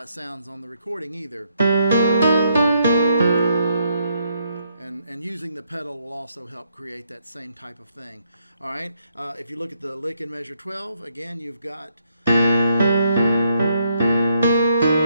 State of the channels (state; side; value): inverted; both; correlation -0.74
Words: sounds on the recording either. And using the pedal will also help create that same type of thing. Alright, if you look at the lick in measure 12, again you've got...